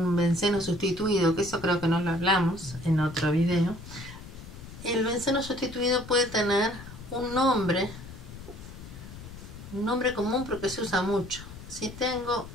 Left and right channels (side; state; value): left; noise; rumble, 14 dB below the sound